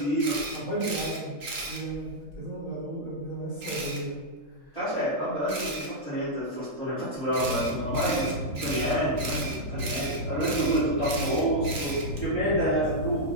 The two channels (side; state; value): right; late; 3.9 ms